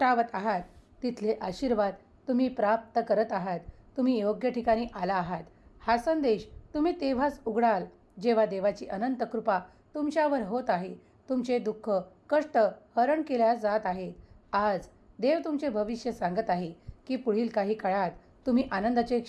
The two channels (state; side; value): identical; both; correlation 1.00